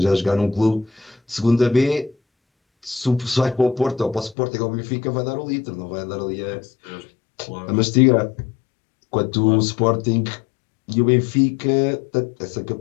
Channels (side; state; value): right; drops out; at 4.4 s